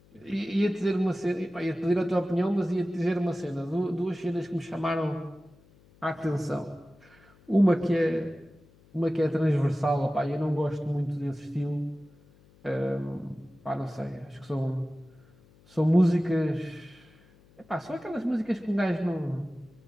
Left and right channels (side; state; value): left; noise; hum, 28 dB below the sound